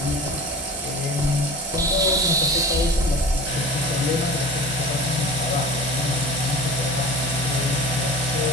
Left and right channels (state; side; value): normal; both; correlation 0.37